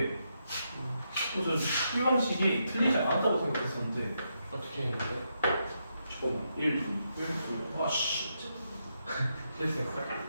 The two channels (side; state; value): both; inverted; correlation -0.82